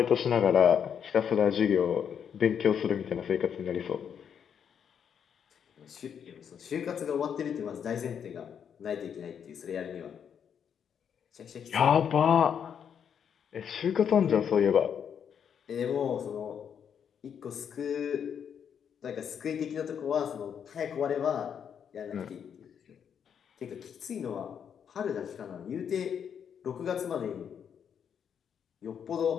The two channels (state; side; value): quieter; right; 7.9 dB